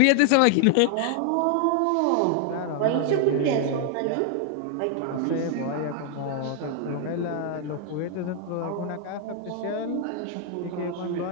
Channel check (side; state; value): both; different; correlation 0.00